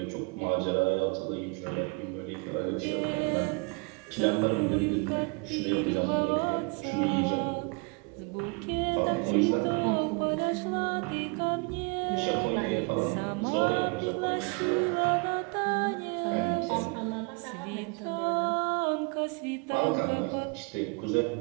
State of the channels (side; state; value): left; quieter; 31.0 dB